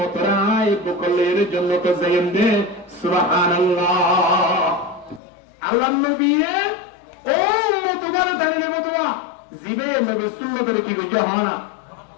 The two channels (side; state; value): right; drops out; at 5.2 s